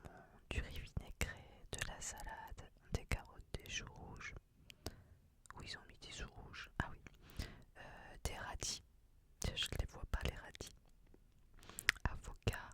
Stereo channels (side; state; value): both; identical; correlation 1.00